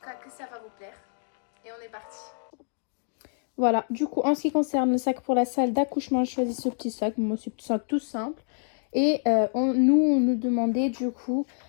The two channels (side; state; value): right; silent; digital silence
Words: cas que ça va vous plaire et on est parti. Voilà, du coup, en ce qui concerne le sac pour la salle d'accouchement, je choisis ce petit sac. Moi, c'est un sac tout simple. Et on nous demandait du coup